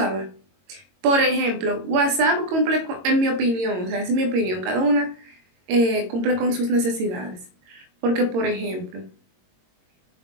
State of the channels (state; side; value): late; left; 22 ms